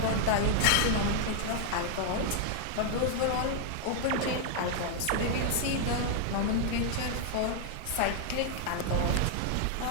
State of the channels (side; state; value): both; different; correlation 0.00